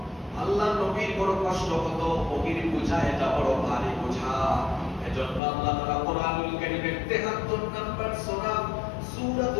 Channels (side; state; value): right; drops out; at 5.4 s